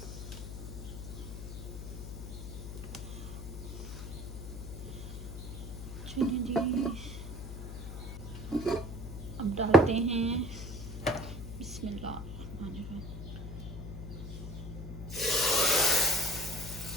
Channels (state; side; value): noise; left; hum, 8 dB below the sound